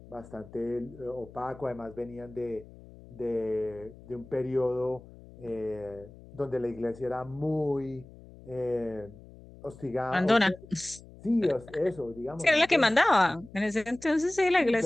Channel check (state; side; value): noise; left; hum, 20 dB below the sound